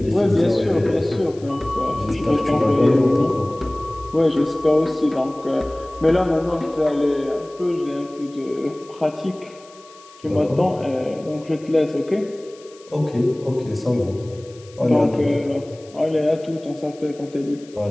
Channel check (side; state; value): left; noise; hiss, 25 dB below the sound